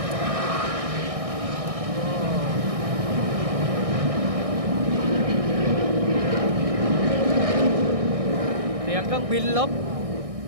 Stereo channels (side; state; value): left; late; 1.6 ms